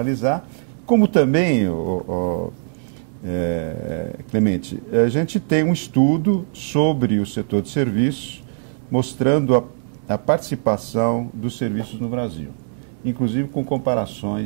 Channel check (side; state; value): left; silent; 65 dB below the other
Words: como também... Clemente, a gente tem um estudo sobre o setor de serviços mostrando a participação dos serviços no Brasil, inclusive com